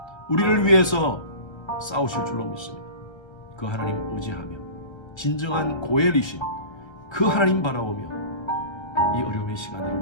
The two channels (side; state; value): right; late; 1.3 ms